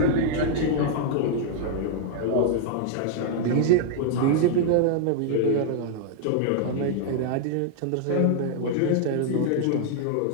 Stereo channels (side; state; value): both; different; correlation -0.01